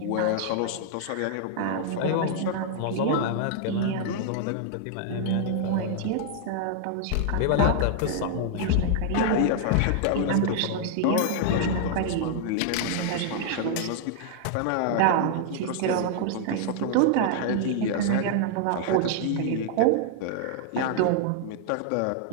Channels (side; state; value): both; different; correlation -0.01